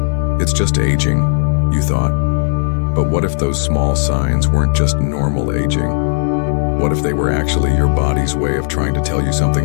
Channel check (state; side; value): silent; right; digital silence